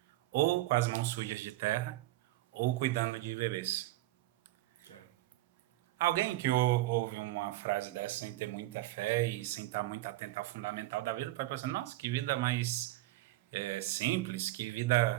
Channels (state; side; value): quieter; left; 17.3 dB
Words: ou com as mãos sujas de terra, ou cuidando de bebês. Alguém que ouve uma frase dessa sem ter muita fé e sem estar muito atento ao fundamental da vida pode pensar, nossa, que vida mais simples, que